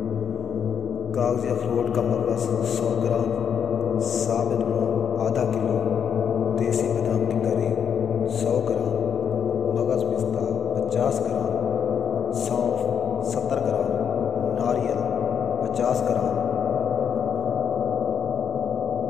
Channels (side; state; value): right; quieter; 7.8 dB